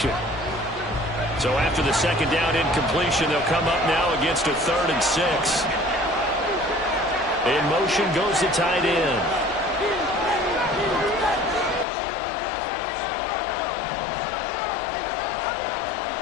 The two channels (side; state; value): right; drops out; at 11.9 s